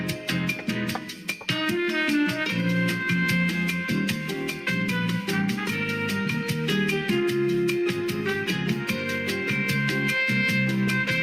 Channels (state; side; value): identical; both; correlation 1.00